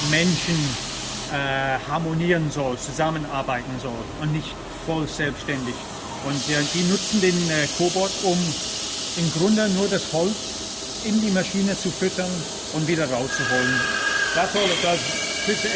Menschen harmonieren soll, zusammenarbeiten soll und nicht voll selbstständig. Und die nutzen den Cobot, um im Grunde nur das Holz in die Maschine zu füttern und wieder rauszuholen. That's all it does. Puts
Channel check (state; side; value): identical; both; correlation 1.00